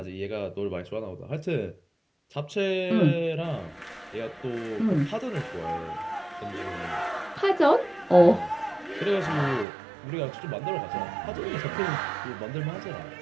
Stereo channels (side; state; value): left; drops out; at 9.7 s